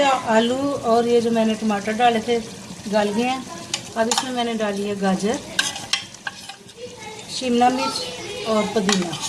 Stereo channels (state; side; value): identical; both; correlation 1.00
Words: आलू और ये जो मैंने टमाटर डाले थे गल गए हैं। अब इसमें मैंने डाली है गाजर, शिमला मिर्च और पुदीना।